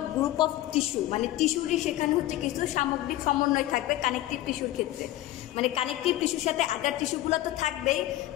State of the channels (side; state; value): right; quieter; 15.2 dB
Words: group of tissue, মানে টিস্যুরই সেখানে হচ্ছে কিছু সামগ্রিক সমন্বয় থাকবে কানেকটিভ টিস্যুর ক্ষেত্রে। মানে কানেকটিভ টিস্যুর সাথে আদার টিস্যুগুলো তো থাকবেই,